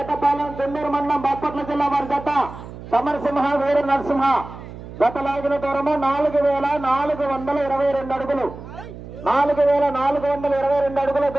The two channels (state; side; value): noise; right; hum, 14 dB below the sound